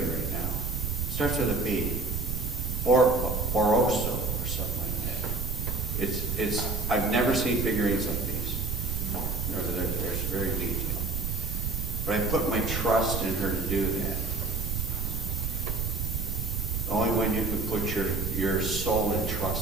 it right now. Starts with a B. Or I've never seen figurines like these. They're very detailed. But I put my trust in her to do that. The only one you can put your soul in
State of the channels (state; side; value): noise; right; rumble, 2 dB below the sound